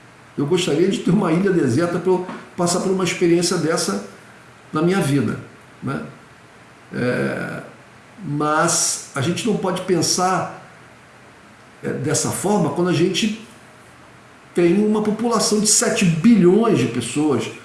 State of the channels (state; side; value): identical; both; correlation 1.00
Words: Eu gostaria de ter uma ilha deserta para eu passar por uma experiência dessa na minha vida, né? Mas a gente não pode pensar dessa forma quando a gente tem uma população de 7 bilhões de pessoas